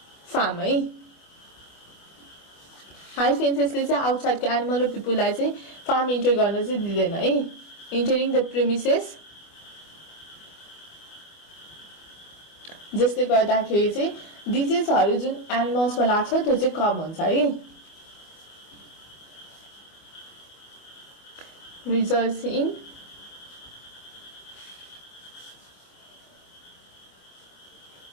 फार्म है। हाई फेन्सेसले चाहिँ आउटसाइडको एनिमल र पिपुललाई चाहिँ फार्म इन्टर गर्न चाहिँ दिँदैन है। इन्टरिङ द प्रिमिसेस, जसले गर्दाखेरि चाहिँ डिजिजहरू जुन एनिमल्समा लाग्छ त्यो चाहिँ कम हुन्छ है। Results in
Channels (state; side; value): late; right; 24 ms